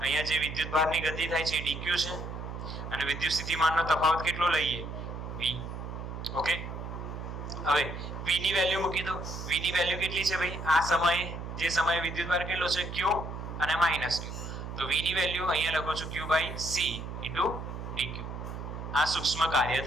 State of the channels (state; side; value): noise; right; hum, 7 dB below the sound